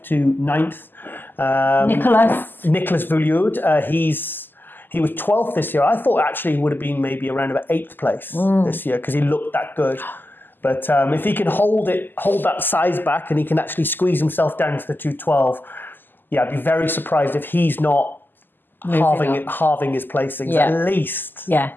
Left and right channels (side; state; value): right; late; 0.092 ms